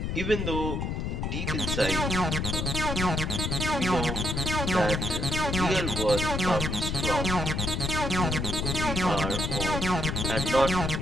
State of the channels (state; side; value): noise; left; rumble, 1 dB below the sound